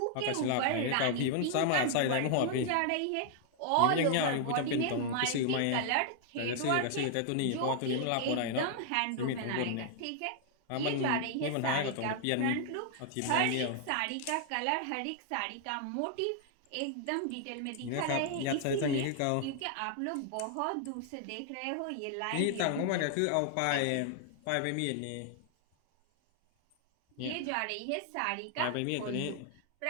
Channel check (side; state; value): both; different; correlation 0.00